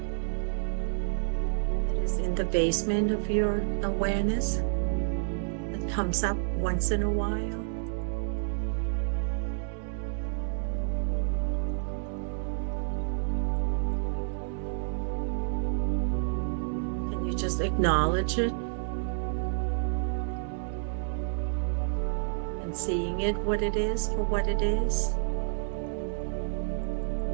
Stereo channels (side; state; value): left; silent; digital silence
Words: that is in the basement of your awareness, that comes up once in a while. Can you just acknowledge it? Seeing it what it is for what it is.